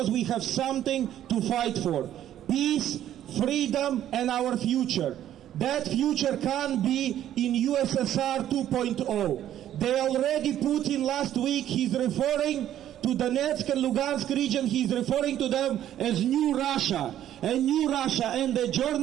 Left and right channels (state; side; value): quieter; left; 11.6 dB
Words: we have something to fight for. Peace, freedom, and our future. That future can be in USSR 2.0. They already, Putin last week, he's referring to Donetsk and Lugansk region, he's referring to them as New Russia. And New Russia, and the